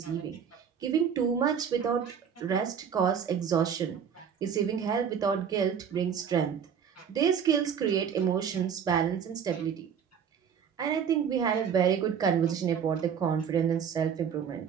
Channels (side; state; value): left; quieter; 7.6 dB